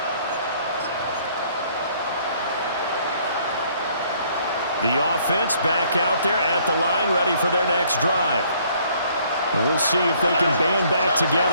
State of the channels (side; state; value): both; inverted; correlation -0.62